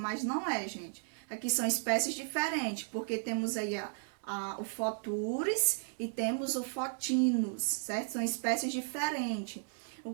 não é, gente. Aqui são espécies diferentes, porque temos aí o Photuris e temos o Photinus, certo? São espécies diferentes.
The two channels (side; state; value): left; silent; digital silence